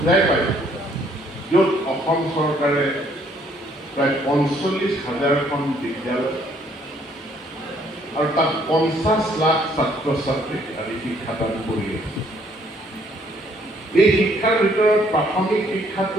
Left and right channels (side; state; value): both; normal; correlation 0.65